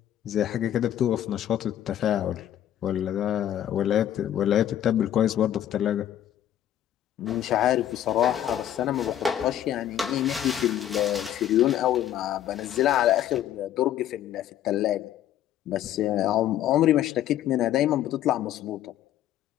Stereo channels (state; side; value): quieter; right; 11.5 dB